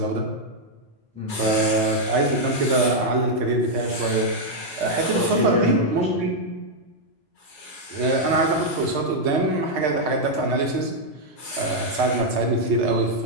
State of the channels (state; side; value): normal; both; correlation -0.02